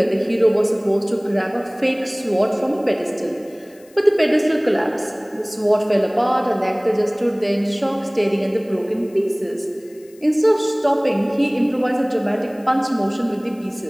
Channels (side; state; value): left; noise; hiss, 28 dB below the sound